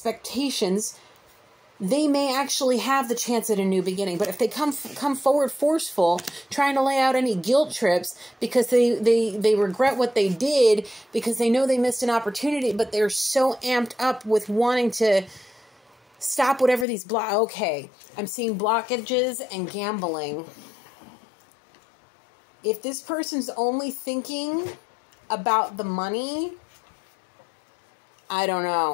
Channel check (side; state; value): right; drops out; at 16.9 s